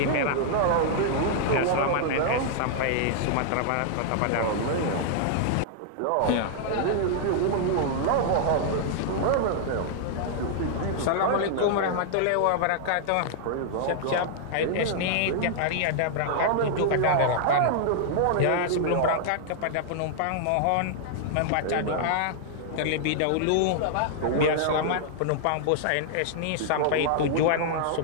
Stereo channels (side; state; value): both; different; correlation -0.01